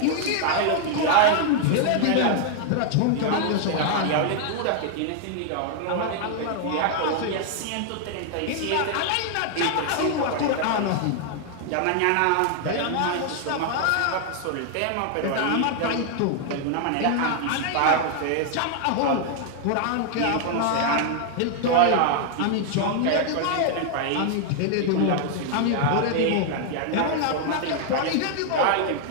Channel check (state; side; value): different; both; correlation 0.00